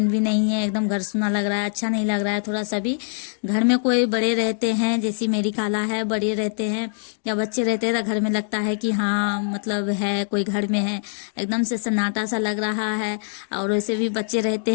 भी नहीं है, एकदम घर सूना लग रहा है, अच्छा नहीं लग रहा है थोड़ा सा भी। घर में कोई बड़े रहते हैं, जैसी मेरी खाला है, बड़े रहते हैं या बच्चे रहते हैं तो घर में लगता है कि हाँ मतलब है कोई घर में है, एकदम से सन्नाटा सा लग रहा है। और वैसे भी बच्चे रहते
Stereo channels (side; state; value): right; silent; digital silence